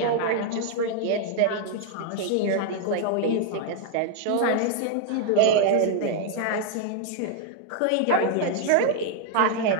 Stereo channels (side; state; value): both; different; correlation 0.00